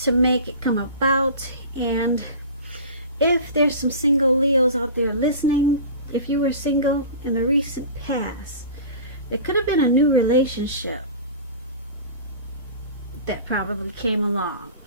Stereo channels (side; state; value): both; inverted; correlation -0.36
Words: to make it come about. And if there's some single Leos out there listening, if you were single in the recent past, it could have been a new relationship that probably came along